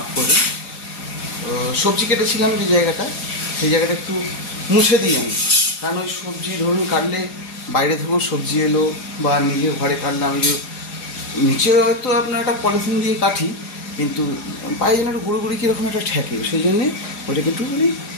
করে। সবজি কেটেছিলাম যে জায়গাটা, সেই জায়গাটা একটু মুছে দিই আমি, কারণ ওই সবজি ধরুন কাটলে বাইরে থেকেও সবজি এলো, বা নিজের ঘরে কাটলে আমি যে নিচে হয়তো আপনার একটা পলিথিন দিয়ে কাটি, কিন্তু পায়ে যেন একটা গুঁড়ো কীরকম একটা ঠেকে, সেই জন্যে ওইটাকে একটুখানি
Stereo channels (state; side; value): late; right; 4.9 ms